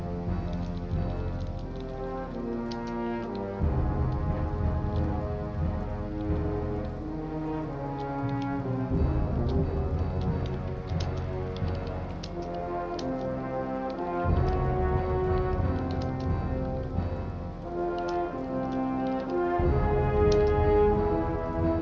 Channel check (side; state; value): both; identical; correlation 1.00